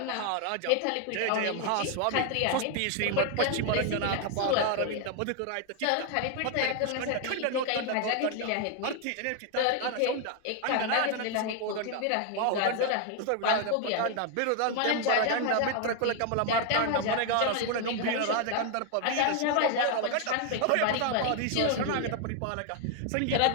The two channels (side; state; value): both; different; correlation 0.00